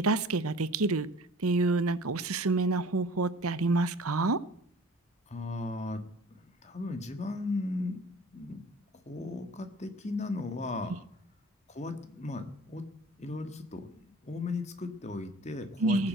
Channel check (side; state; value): both; normal; correlation 0.46